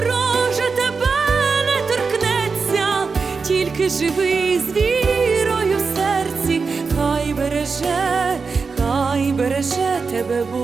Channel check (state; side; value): quieter; left; 4.8 dB